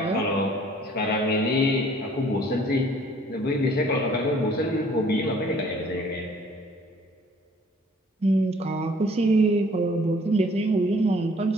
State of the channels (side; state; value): both; normal; correlation 0.56